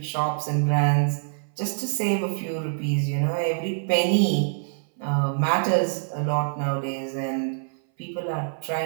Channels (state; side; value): silent; left; 62 dB below the other